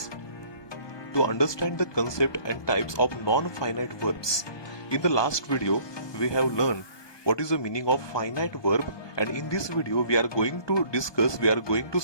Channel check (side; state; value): right; late; 1.2 ms